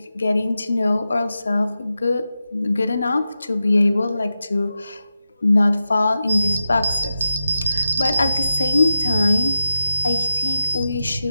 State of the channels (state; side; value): inverted; both; correlation -0.90